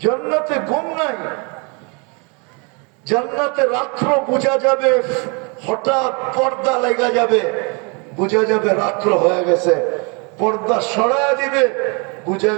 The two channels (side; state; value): left; quieter; 32.8 dB